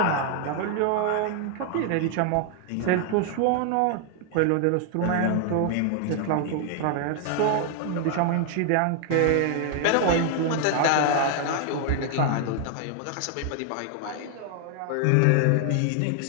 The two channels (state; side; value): different; both; correlation 0.00